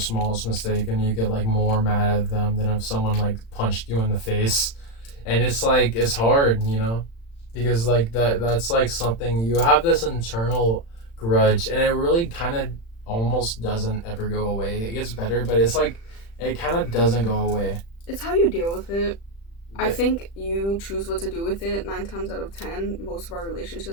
mistake and you get, like, more mad at them than if someone, like, punched you in the face. And it's, like, it's hard, you know? Because, like, that's, like, something... You have this internal grudge, and it really kind of almost doesn't ever go away. It gets better, but it's, like, it kind of doesn't go away. It's how you deal with it. I think you choose what to do with it 9 times out of 10. Most of our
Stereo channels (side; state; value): right; late; 35 ms